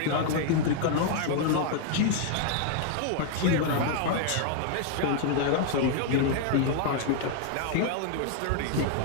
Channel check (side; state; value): both; different; correlation 0.00